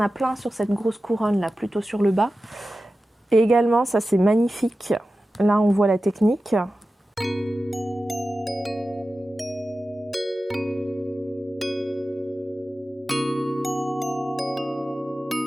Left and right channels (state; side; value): normal; both; correlation 0.94